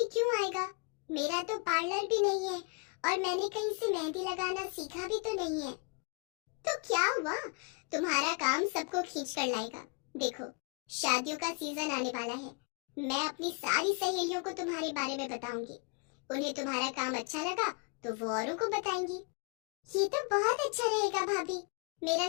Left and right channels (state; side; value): quieter; right; 34.6 dB